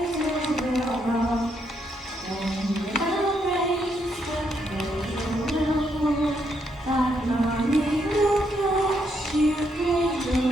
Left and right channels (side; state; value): both; normal; correlation 0.76